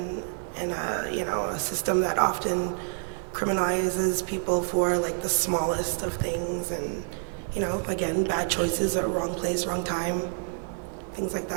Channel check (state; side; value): silent; left; 59 dB below the other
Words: a system that often criminalizes people for like the smallest of things, and again, bad choices or wrong place, wrong time, things like